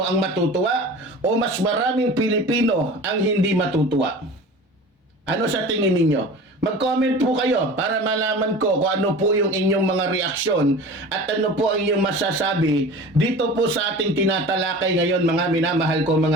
ang matutuwa o mas maraming Pilipino ang hindi matutuwa? Ano sa tingin ninyo? Mag-comment po kayo para malaman ko kung ano po yung inyong mga reaksyon at ano po ang inyong masasabi dito po sa ating tinatalakay ngayon mga minamahal ko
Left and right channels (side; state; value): both; normal; correlation 0.38